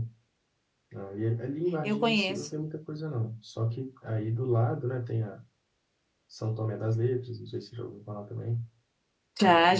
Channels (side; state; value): both; identical; correlation 1.00